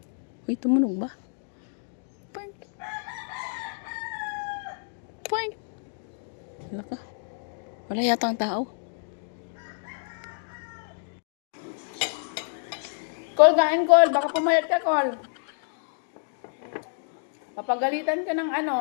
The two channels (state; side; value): silent; right; 59 dB below the other